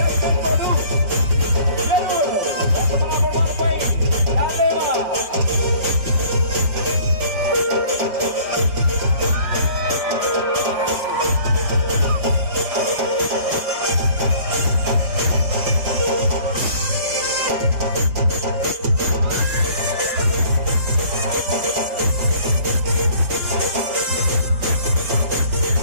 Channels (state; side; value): late; left; 5.5 ms